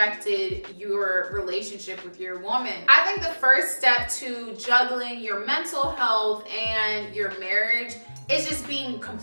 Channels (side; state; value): both; inverted; correlation -1.00